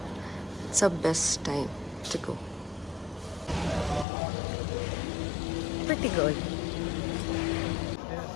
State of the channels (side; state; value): right; drops out; at 4.0 s